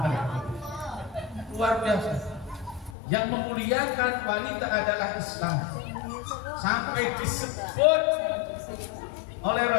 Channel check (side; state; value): right; drops out; at 3.0 s